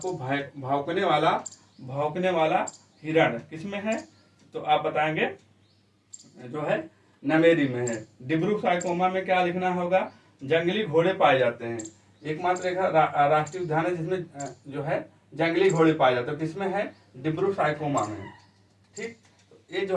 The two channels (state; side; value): identical; both; correlation 1.00